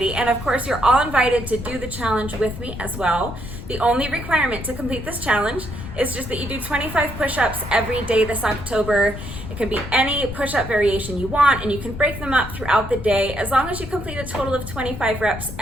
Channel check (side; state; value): left; noise; rumble, 10 dB below the sound